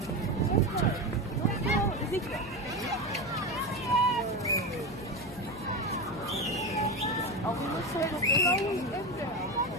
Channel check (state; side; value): noise; left; hum, 19 dB below the sound